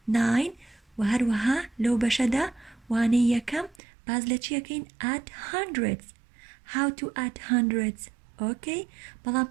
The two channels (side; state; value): left; drops out; at 3.8 s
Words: 9 و هەروەها لەو بەشەدا وانەی یەکەم باز لە چیەکەین؟ add hundreds. How to add hundreds. Okay? بەڵام